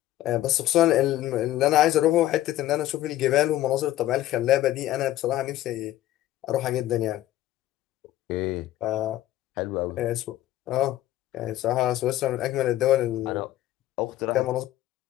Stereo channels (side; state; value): right; quieter; 14.1 dB